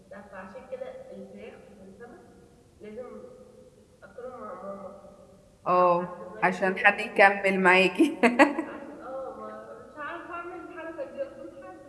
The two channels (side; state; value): both; identical; correlation 1.00